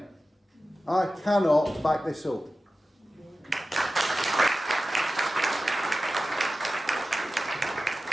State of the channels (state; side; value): normal; both; correlation 0.94